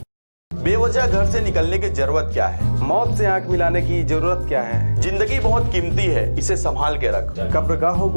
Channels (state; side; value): inverted; both; correlation -1.00